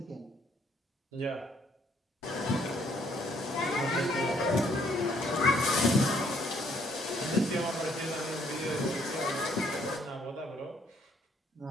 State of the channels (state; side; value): normal; both; correlation 0.66